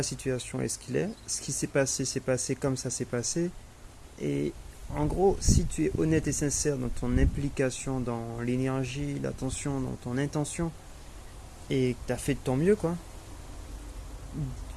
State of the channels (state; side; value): identical; both; correlation 1.00